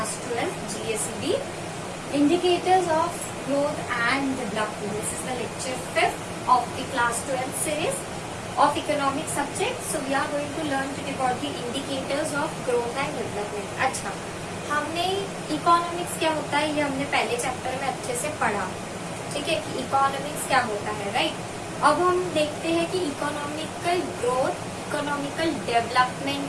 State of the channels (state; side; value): identical; both; correlation 1.00